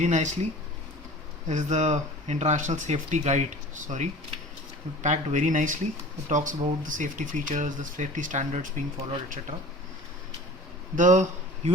nicely. This is the international safety guide. Packed very nicely. It talks about the safety features, the safety standards being followed, etc. The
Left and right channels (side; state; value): both; normal; correlation 0.41